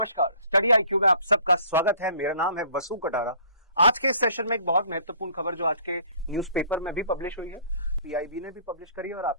स्टडी IQ में आप सबका स्वागत है। मेरा नाम है वसु कटारा। आज के इस सेशन में एक बहुत महत्वपूर्ण खबर जो आज के न्यूज़पेपर में भी पब्लिश हुई है, PIB ने भी पब्लिश करी है और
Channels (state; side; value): inverted; both; correlation -0.55